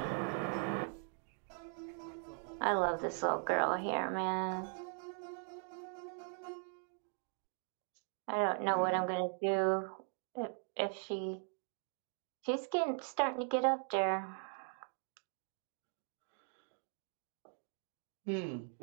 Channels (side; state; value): left; silent; 51 dB below the other